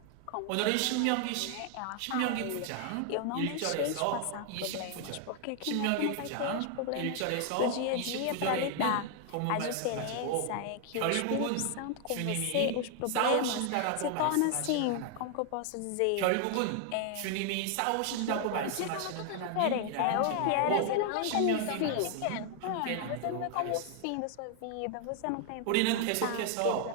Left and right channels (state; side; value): different; both; correlation 0.00